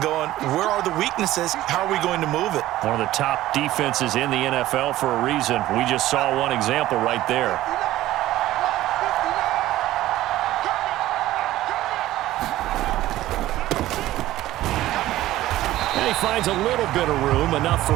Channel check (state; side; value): quieter; left; 15.2 dB